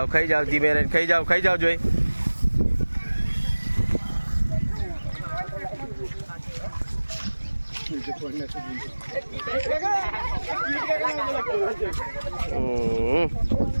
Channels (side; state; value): both; inverted; correlation -1.00